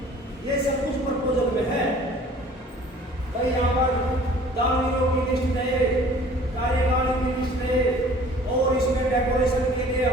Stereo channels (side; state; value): both; normal; correlation 0.50